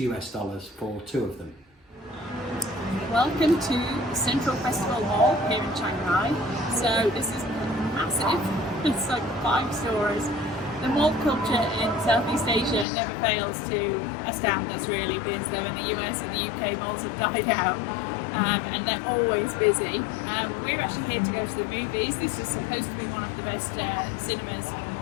for two of them. Welcome to Central Festival Mall here in Chiang Mai. So this is massive. It's like 5 stores. The mall culture in Southeast Asia never fails to astound us, really, because though in the US and the UK malls have died out, and they're always busy. We're actually here to go to the movies. This is supposed to be one of the best cinemas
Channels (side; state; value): right; drops out; at 12.9 s